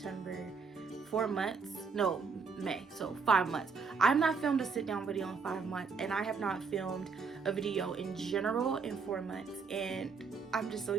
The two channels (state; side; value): quieter; left; 5.1 dB